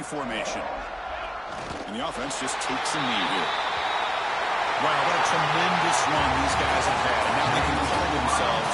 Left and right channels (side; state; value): both; identical; correlation 1.00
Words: formation. And the offense just takes a knee here. Wow, what a tremendous run these guys have had. And now they can call themselves